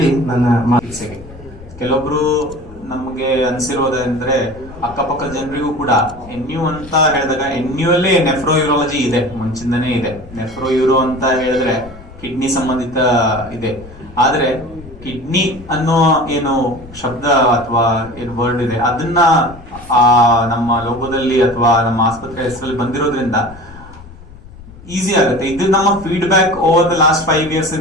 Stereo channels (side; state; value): left; noise; rumble, 18 dB below the sound